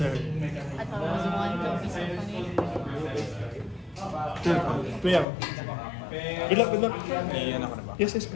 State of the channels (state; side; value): drops out; right; at 5.2 s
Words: I thought it was one. Don't be so funny. Sure. Play ako. Good luck, good luck. Iyan ako na ba? Yes, yes,